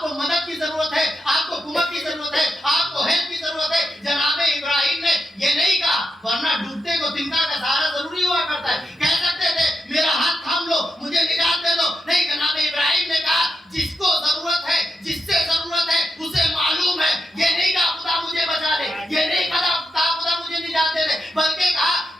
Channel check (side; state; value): both; normal; correlation 0.85